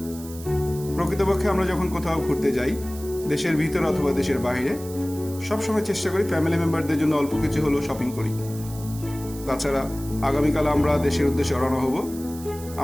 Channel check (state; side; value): noise; right; hiss, 16 dB below the sound